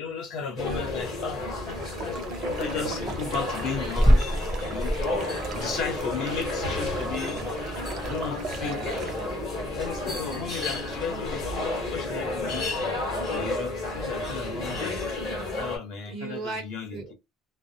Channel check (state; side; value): normal; both; correlation 0.62